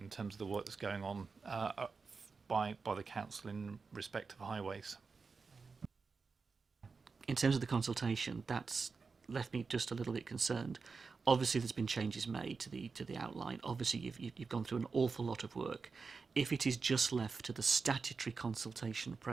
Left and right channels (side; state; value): left; quieter; 4.7 dB